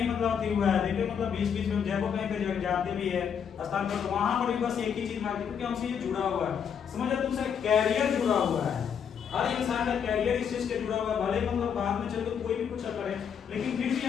मतलब अथी हुआ है, देखिए मतलब बीच-बीच में जब कहीं पे जाते भी है स्थान पर, तो वहां पर भी बस एक ही चीज मांगते क्योंकि हमसे ये जुड़ा हुआ है। समझो तुमसे कैरियर जुड़ा हुआ है, हर इंसान का कैरियर इस चीज के जुड़ा हुआ है। भले मतलब बाद में चल के कोई भी कुछ करे, लेकिन फिर भी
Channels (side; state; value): right; quieter; 7.6 dB